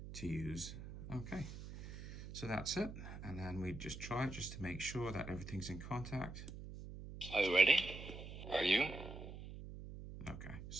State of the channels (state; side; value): noise; right; hum, 10 dB below the sound